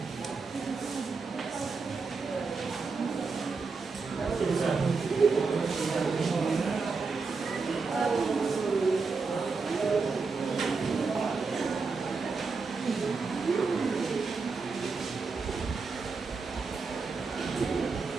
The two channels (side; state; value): left; quieter; 4.5 dB